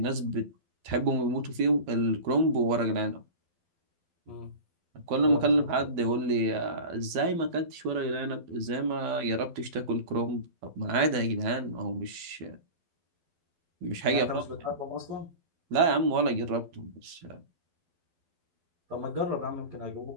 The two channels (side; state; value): left; late; 12 ms